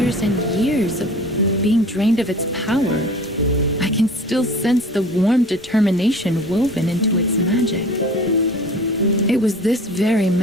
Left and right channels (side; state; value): both; normal; correlation 0.43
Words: and years of being drained of its power. I can still sense the warm determination woven into its magic. It was this very